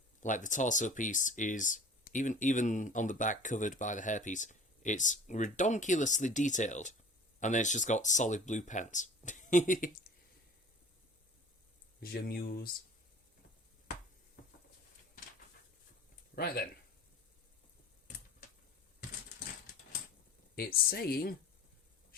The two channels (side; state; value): both; normal; correlation 0.43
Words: like, the torso piece is, even on the back covered by the hairpiece, it's redonkulously detailed. And then it's just got solid blue pants. J'amuse. Right then. It's saying